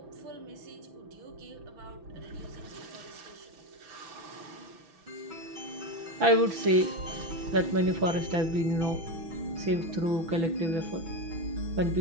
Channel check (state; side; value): late; left; 6.1 ms